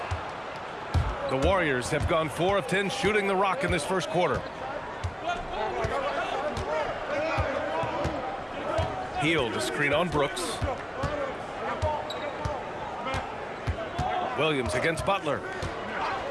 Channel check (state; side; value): identical; both; correlation 1.00